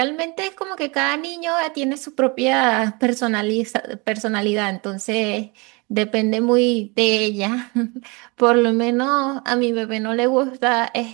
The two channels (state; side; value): quieter; left; 28.3 dB